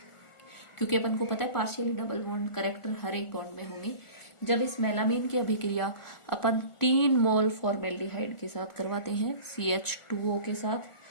क्योंकि अपन को पता है पार्शियली डबल बॉन्ड करेक्टर हर एक बॉन्ड में होंगे। जब इस मेलामीन की अभिक्रिया अपन 3 मोल फॉर्मेल्डिहाइड के साथ करवाते हैं CH2O के साथ,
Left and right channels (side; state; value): right; late; 1.4 ms